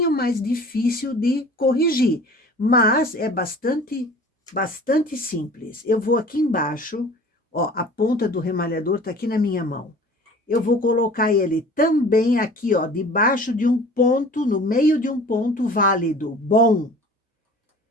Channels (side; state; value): both; normal; correlation 0.44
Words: mais difícil de corrigir, mas é bastante simples. Eu vou aqui embaixo, ó, a ponta do remalhador tá aqui na minha mão. Eu vou colocar ele também aqui, ó, debaixo de um ponto, no meio de um ponto válido, bom.